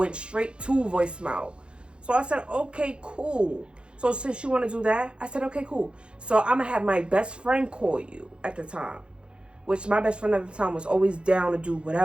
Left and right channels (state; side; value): late; left; 0.055 ms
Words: straight to voicemail. So I said, okay, cool. So since you want to do that, I said, okay, cool. So I'm going to have my best friend call you at the time. Which my best friend at the time was always down to do